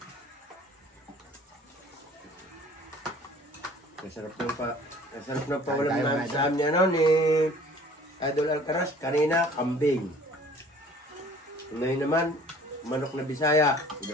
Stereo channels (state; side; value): normal; both; correlation 0.51